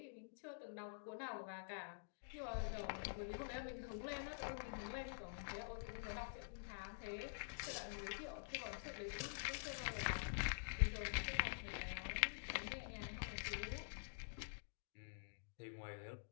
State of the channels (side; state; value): right; silent; digital silence